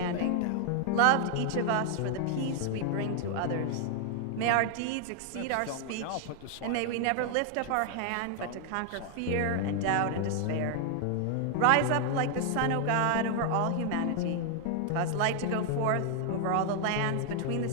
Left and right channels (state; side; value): different; both; correlation 0.00